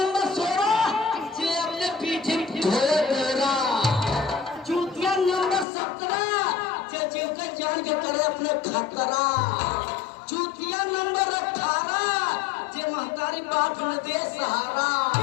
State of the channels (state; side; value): drops out; right; at 5.7 s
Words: 16 जे अपने पीठी ढोले डेरा, चूतिया नंबर 17 जे जीव के जान के करे अपने खतरा, चूतिया नंबर 18 जे महतारी बाप न दे सहारा,